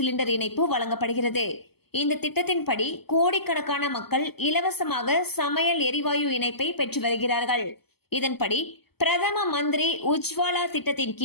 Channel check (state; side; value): late; right; 0.96 ms